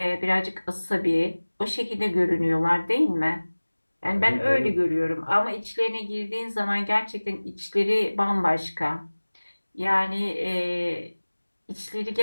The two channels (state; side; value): inverted; both; correlation -1.00